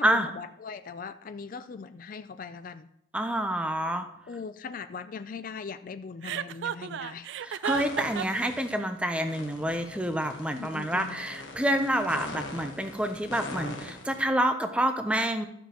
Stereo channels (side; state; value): both; normal; correlation 0.67